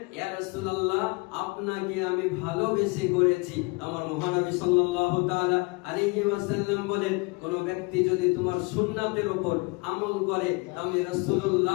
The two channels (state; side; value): quieter; right; 27.6 dB